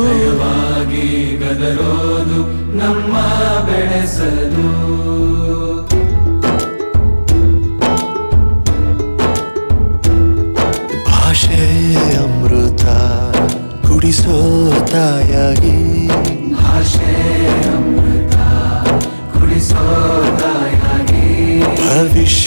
ನಯವಾಗಿ ಗದರೋದು ನಮ್ಮ ಬೆಳೆಸಲು ಭಾಷೆ ಅಮೃತ ಕುಡಿಸೋ ತಾಯಾಗಿ ಭಾಷೆ ಅಮೃತ ಕುಡಿಸೋ ತಾಯಾಗಿ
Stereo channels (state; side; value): inverted; both; correlation -1.00